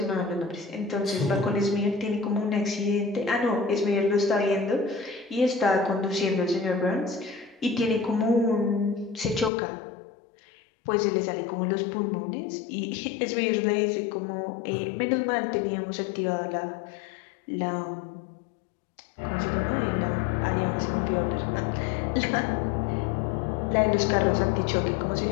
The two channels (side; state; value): right; drops out; at 9.5 s